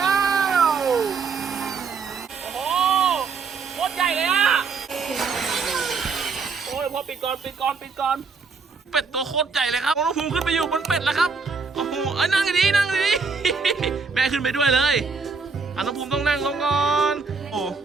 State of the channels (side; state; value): left; quieter; 4.9 dB